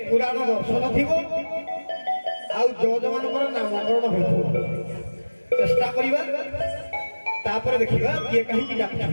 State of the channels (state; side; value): inverted; both; correlation -1.00